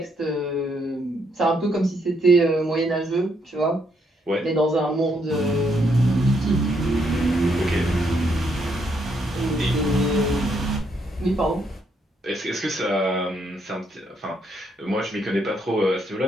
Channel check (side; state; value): both; normal; correlation 0.74